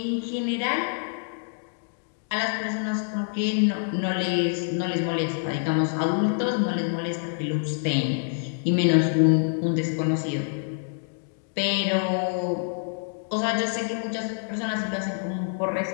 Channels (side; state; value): right; silent; digital silence